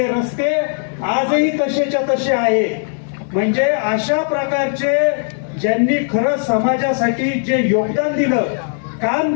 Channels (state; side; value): silent; right; 68 dB below the other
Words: रस्ते आजही तसेच्या तसे आहे. म्हणजे अशा प्रकारचे ज्यांनी खरं समाजासाठी जे योगदान दिलं, काम